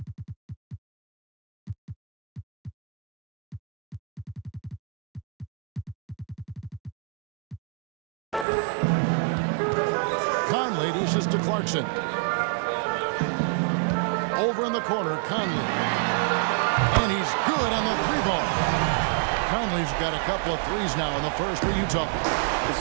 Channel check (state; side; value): drops out; left; at 8.5 s